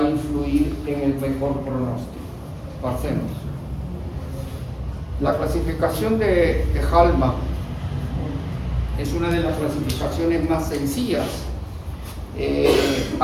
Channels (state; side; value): identical; both; correlation 1.00